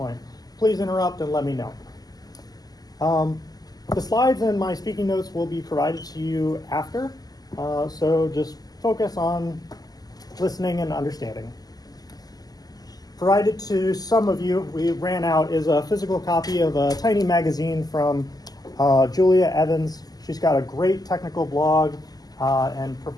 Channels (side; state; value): right; late; 0.18 ms